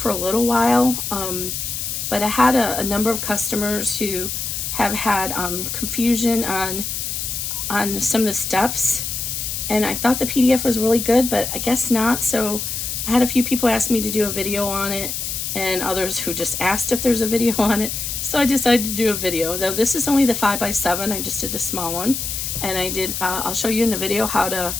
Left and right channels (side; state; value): left; noise; hiss, 4 dB below the sound